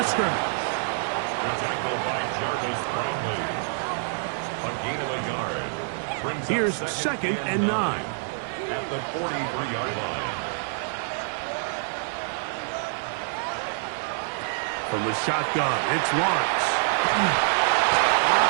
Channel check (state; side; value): silent; left; 61 dB below the other